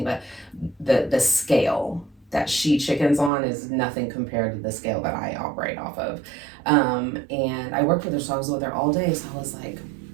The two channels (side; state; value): left; drops out; at 3.3 s